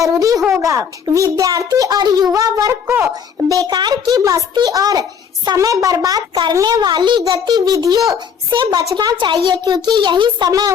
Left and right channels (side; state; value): right; quieter; 7.1 dB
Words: होगा। विद्यार्थी और युवा वर्ग को बेकार की मस्ती और समय बर्बाद करने वाली गतिविधियों से बचना चाहिए, क्योंकि यही समय